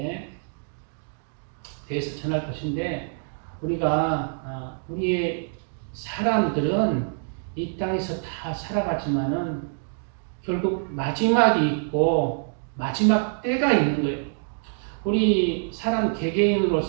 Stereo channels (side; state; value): left; silent; digital silence